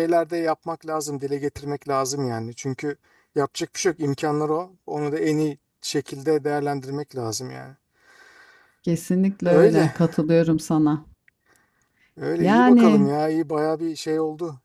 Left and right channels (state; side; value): identical; both; correlation 1.00